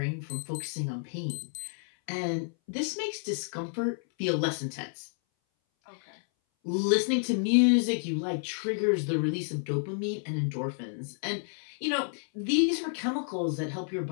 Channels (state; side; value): silent; right; 58 dB below the other